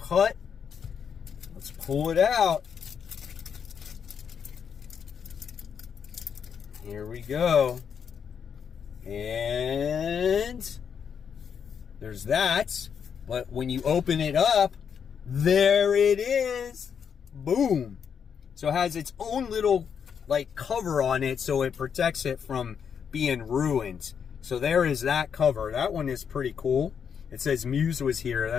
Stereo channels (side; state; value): right; quieter; 7.2 dB